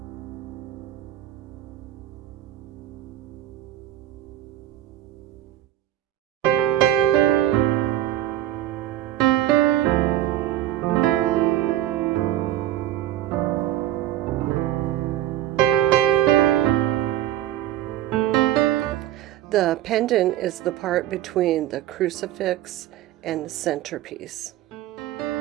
The pendant is the part between the crucifix and the centerpiece.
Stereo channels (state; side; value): quieter; left; 13.3 dB